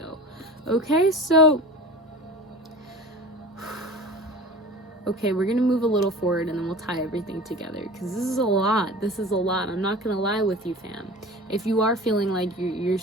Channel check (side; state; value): both; normal; correlation 0.36